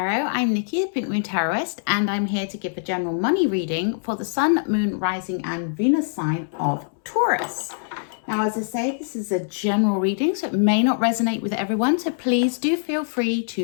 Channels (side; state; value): right; silent; 63 dB below the other